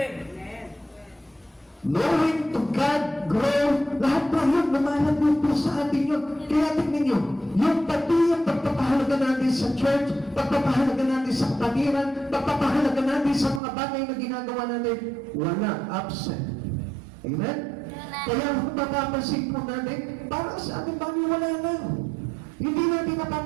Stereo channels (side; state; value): left; drops out; at 13.6 s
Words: knowing to God, grow, lahat po yun, lumalago po sa atin yun. Kaya tingnan nyo, yung pati yung pagpapahalaga natin sa church, pagpapahalaga natin sa kapatiran, pagpapahalaga natin sa mga bagay na ginagawa natin, wala, absent. Amen? Kaya kung mapapansin po natin, parang sa ating bagay wala na. Hindi natin